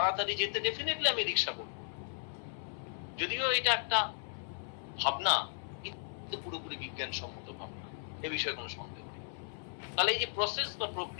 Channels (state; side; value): silent; right; 54 dB below the other